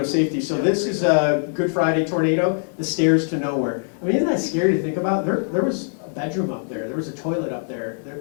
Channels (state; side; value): silent; right; digital silence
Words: safety. So this is a Good Friday tornado, the stairs to nowhere. I mean, isn't that scary to think about? There was a bedroom up there. There was a toilet up there.